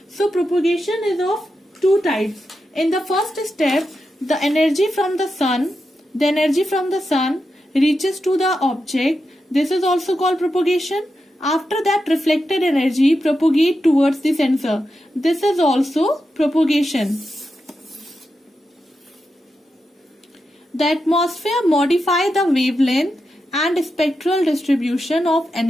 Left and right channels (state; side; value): normal; both; correlation 0.88